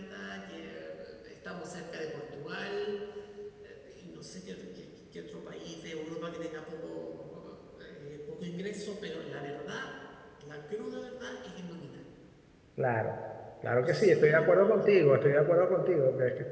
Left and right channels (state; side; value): identical; both; correlation 1.00